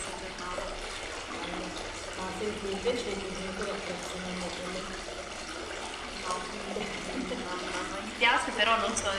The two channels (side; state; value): both; identical; correlation 1.00